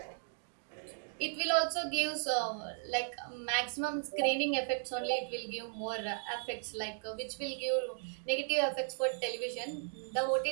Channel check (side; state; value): left; silent; digital silence